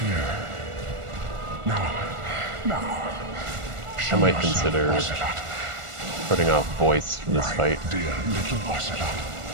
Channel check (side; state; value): left; late; 1.4 ms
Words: Now. I might consider putting off voice for this fight. Dear little Ocelot.